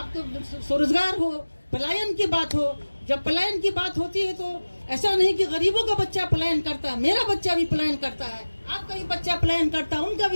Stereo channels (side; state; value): both; inverted; correlation -1.00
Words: स्वरोजगार हो, पलायन की बात हो। जब पलायन की बात होती है तो ऐसा नहीं कि गरीबों का बच्चा पलायन करता है, मेरा बच्चा भी पलायन करता है, आपका भी बच्चा पलायन करता है, उनका